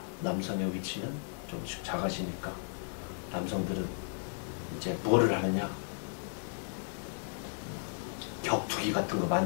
남성의 위치는 조금씩 작아지니까 남성들은 이제 뭐를 하느냐? 격투기 같은 거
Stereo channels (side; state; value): right; silent; digital silence